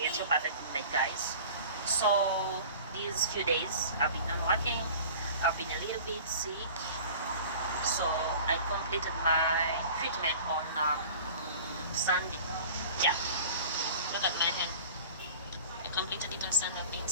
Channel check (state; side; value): inverted; both; correlation -0.42